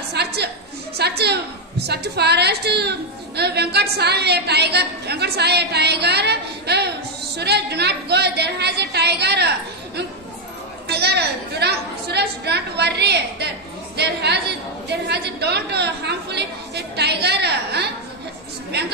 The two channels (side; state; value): both; normal; correlation 0.04